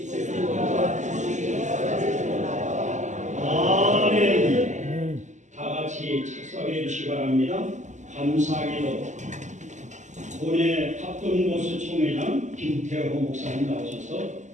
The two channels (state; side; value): late; left; 0.34 ms